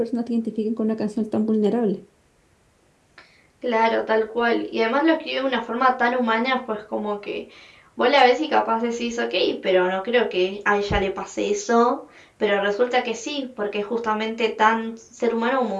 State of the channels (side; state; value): both; identical; correlation 1.00